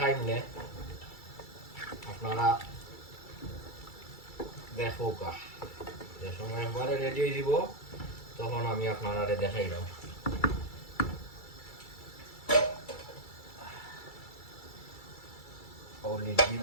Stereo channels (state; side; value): late; right; 2.3 ms